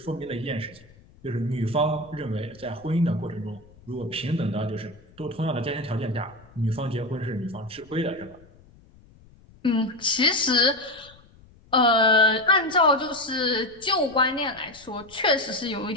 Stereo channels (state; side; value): noise; left; rumble, 26 dB below the sound